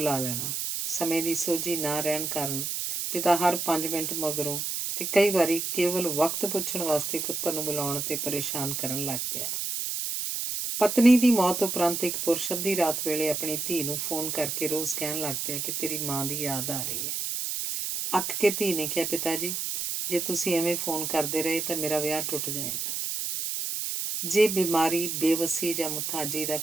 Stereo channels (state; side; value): noise; right; hiss, 2 dB below the sound